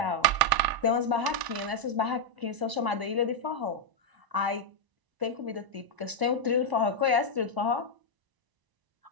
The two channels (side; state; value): left; late; 1.0 ms